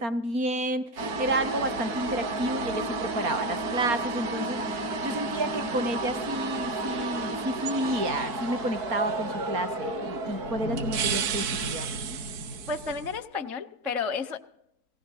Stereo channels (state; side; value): late; left; 4.6 ms